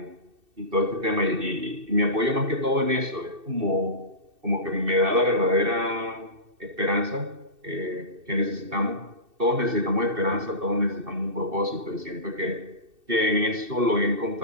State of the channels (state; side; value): late; left; 2.7 ms